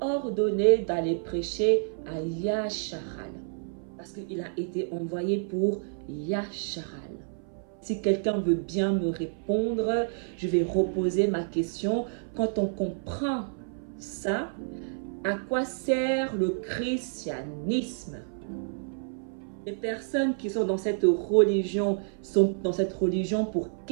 d'aller prêcher à Yacharal. Parce qu'il a été envoyé pour Yasharal. Si quelqu'un veut bien me répondre, je vais reposer ma question. Quand on comprend ça, à quoi sert le christianisme? Les personnes qui sont dans cette religion sont dans cette religion pour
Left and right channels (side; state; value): left; silent; 56 dB below the other